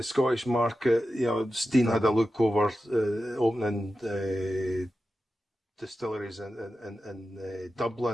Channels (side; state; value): both; normal; correlation 0.92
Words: Scottish market, Stein had a look over opening distilleries in